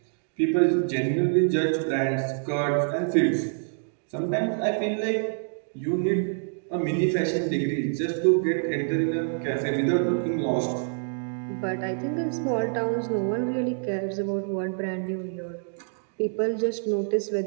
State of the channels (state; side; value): silent; left; digital silence